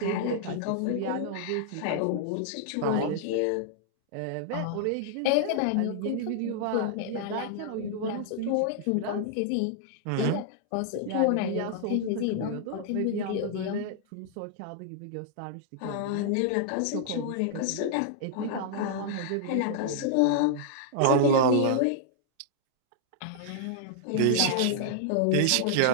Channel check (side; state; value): both; different; correlation -0.01